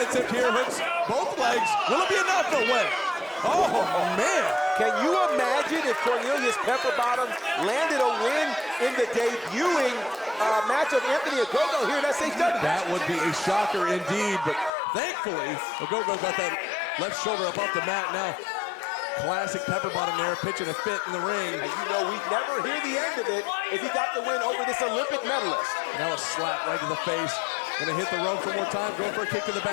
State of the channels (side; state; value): right; drops out; at 14.7 s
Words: here? Hooks both legs. Will it be enough? No way. Oh, man. Can you imagine if Cornelius Pepper Bottom landed a win in the debuting match of Anthony Ogogo here at SHW? That would be a shocker indeed, but thankfully, Ogogo got that left shoulder up off the mat now. Classic Pepper Bottom there, pitching a fit in the ring. And you know we'd never hear the end of it if he got the win over this Olympic medalist. Now a slap right to the face. Gonna hit the rope one more time, going for a kick to the